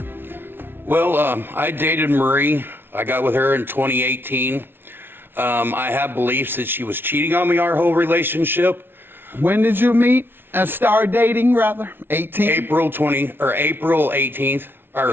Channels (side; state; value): left; late; 0.11 ms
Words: Well, I dated Marie. I got with her in 2018. I have beliefs that she was cheating on me our whole relationship. When did you meet? Start dating, rather? 18? April 18th, or